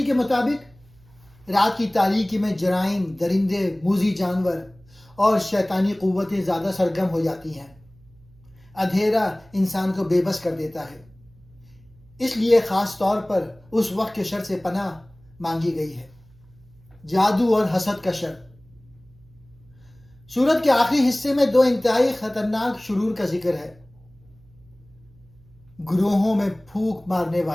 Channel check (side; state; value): right; noise; hum, 27 dB below the sound